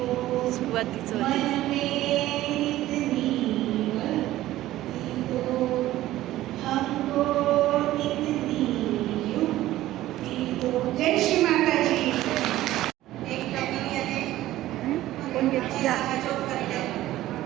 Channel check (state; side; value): quieter; left; 15.1 dB